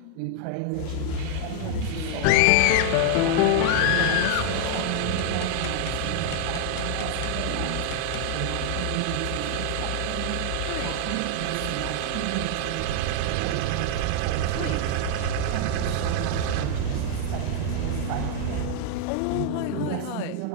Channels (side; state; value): both; different; correlation 0.00